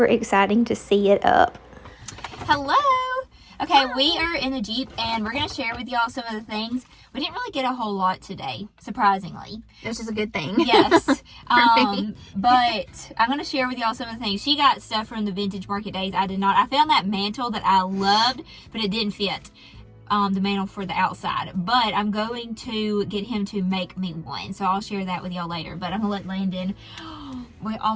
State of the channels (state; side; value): identical; both; correlation 1.00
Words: exciting to see it up. Hello. Okay, we are in the Jeep, and we're going to share with y'all some of the things. We didn't really get a whole lot today, surprisingly. Which is a good thing. Yes. me. But I'm going to share with y'all some of the things. She got stuff from the Vintage Market Days. I did not. I found that mantle that I loved, but it didn't fit. The mantle for the outside. But I'm going to get him to make me one. So I'll share that with y'all later. But I'm going to let Landon... We